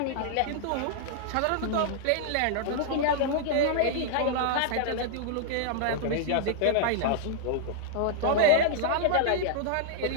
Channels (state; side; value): different; both; correlation -0.01